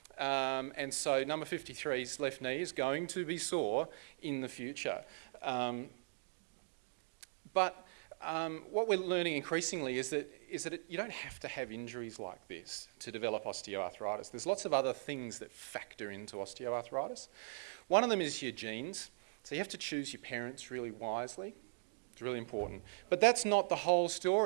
And so number 53's left knee is going to be sore in the future. But what we're learning increasingly is that you don't have to have injuries like this to develop osteoarthritis. There's lots of other things that factor into osteoarthritis. One of them is your genes. So you have to choose your parents really wisely. It's really important. But that's not the whole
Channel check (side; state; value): left; silent; digital silence